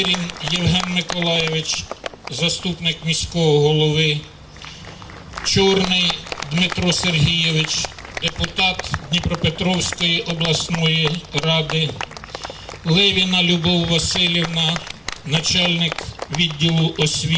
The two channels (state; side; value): identical; both; correlation 1.00